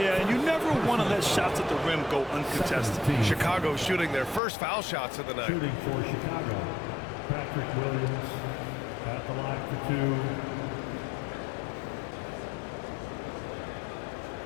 Yeah, and you never want to let shots at the rim go uncontested. Chicago shooting their first foul shots of the night. Shooting for Chicago, Patrick Williams at the line for 2.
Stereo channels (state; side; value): drops out; right; at 4.4 s